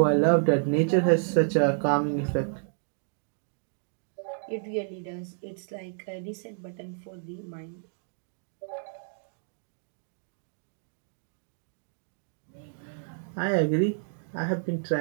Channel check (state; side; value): silent; left; digital silence